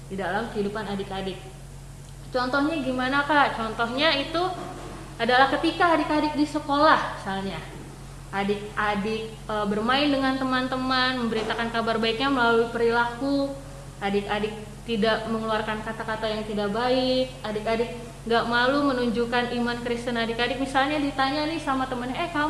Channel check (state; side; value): identical; both; correlation 1.00